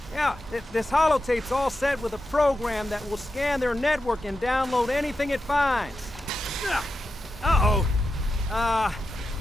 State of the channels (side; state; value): both; normal; correlation 0.89